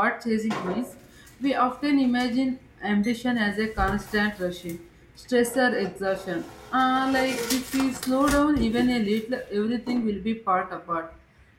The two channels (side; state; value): both; identical; correlation 1.00